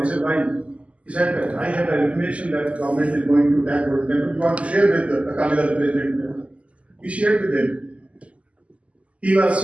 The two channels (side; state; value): left; late; 0.064 ms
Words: said, why? He said, I have an information that the government is going to attack Golden Temple. You want to share with the Akali Dal president? We shared with him. He was